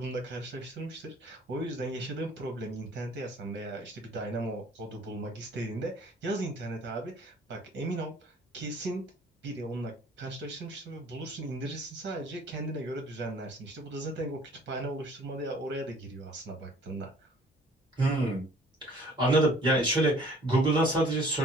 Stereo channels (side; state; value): both; normal; correlation 0.54